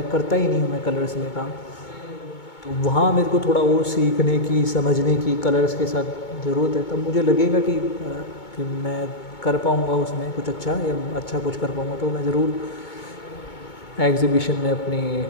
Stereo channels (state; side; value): late; right; 2.2 ms